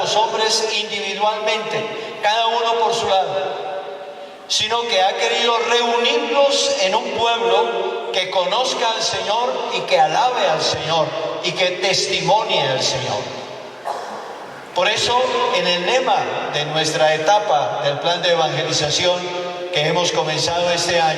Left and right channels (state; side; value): identical; both; correlation 1.00